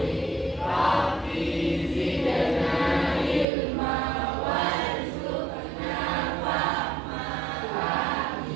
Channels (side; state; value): left; drops out; at 3.5 s